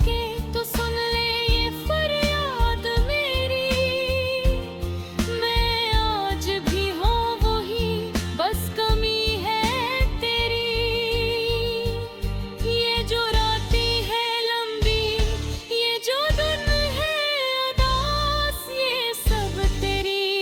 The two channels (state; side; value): identical; both; correlation 1.00